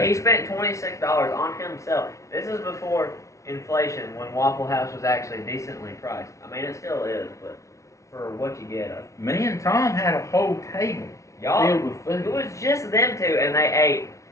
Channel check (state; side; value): late; right; 0.15 ms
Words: he spent $26 on himself. This is before inflation, when Waffle House was actually decently priced. I mean, it still is, but for what you get, Me and Tom had a whole table y'all, filled with it food. was just them two, and they ate